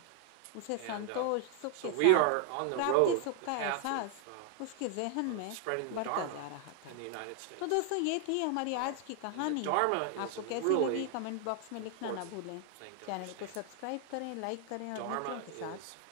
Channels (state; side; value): different; both; correlation 0.00